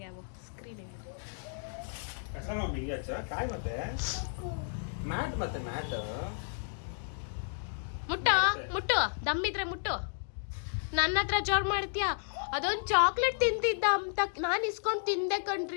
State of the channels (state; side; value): silent; right; digital silence